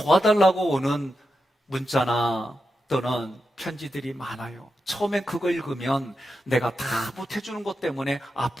오는 문자나 또는 편지들이 많아요. 처음엔 그거 읽으면 내가 다 못해주는 것 때문에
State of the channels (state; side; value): normal; both; correlation 0.88